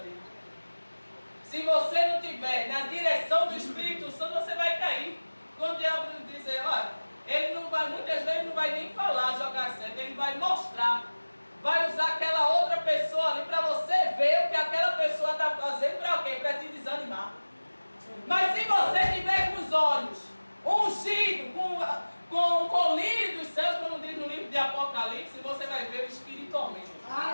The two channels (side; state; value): both; inverted; correlation -1.00